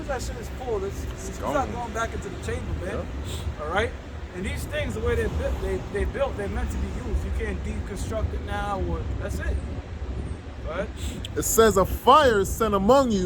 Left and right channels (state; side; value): identical; both; correlation 1.00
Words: that shit is pulled, it's not going back into the chamber, man. Yeah. All right? And these things, the way they're built, they're meant to be used. You can't deconstruct it now, or that's it. Right? It says, a fire is sent among